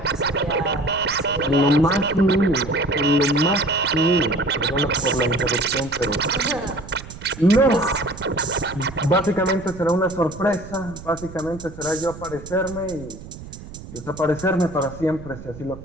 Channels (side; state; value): right; noise; rumble, 15 dB below the sound